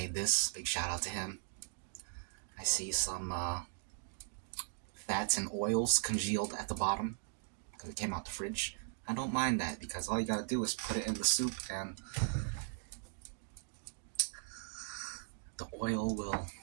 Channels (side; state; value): left; silent; digital silence